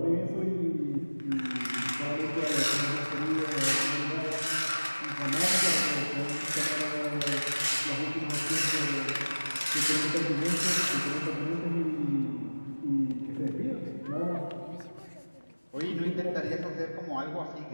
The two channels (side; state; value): both; inverted; correlation -1.00